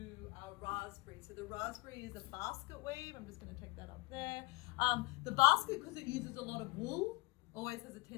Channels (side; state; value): right; quieter; 23.1 dB